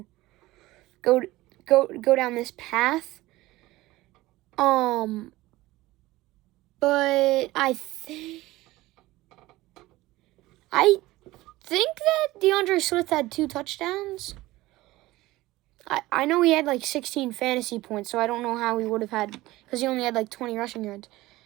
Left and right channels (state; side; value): quieter; left; 18.3 dB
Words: go down this path. But I think that DeAndre Swift had 2 touchdowns. I know he had like 16 fantasy points, so I don't know how he would have had, because he only had like 20 rushing yards.